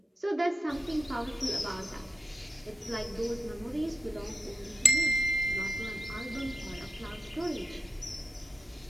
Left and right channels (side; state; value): both; normal; correlation 0.92